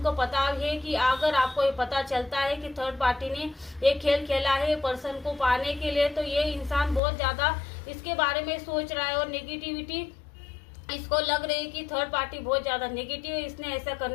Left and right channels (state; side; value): drops out; right; at 7.0 s